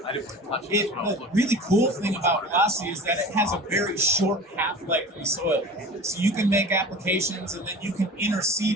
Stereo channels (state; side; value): normal; both; correlation 0.38